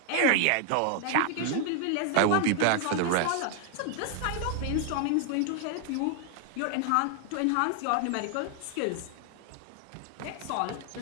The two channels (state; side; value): different; both; correlation 0.00